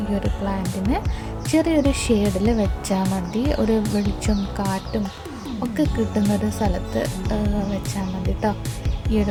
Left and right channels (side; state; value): both; identical; correlation 1.00